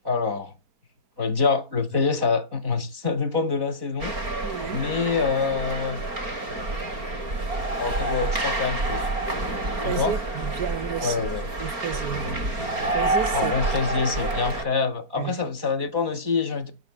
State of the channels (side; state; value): left; late; 4.4 ms